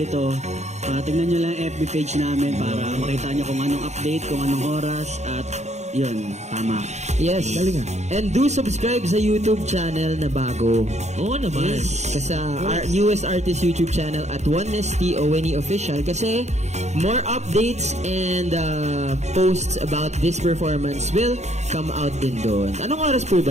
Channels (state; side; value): late; left; 0.33 ms